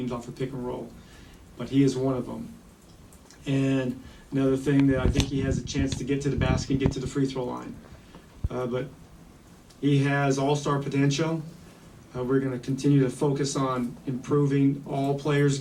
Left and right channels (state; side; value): identical; both; correlation 1.00